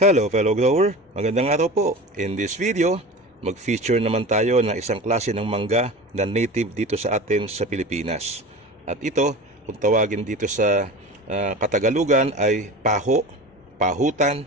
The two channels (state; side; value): normal; both; correlation 0.33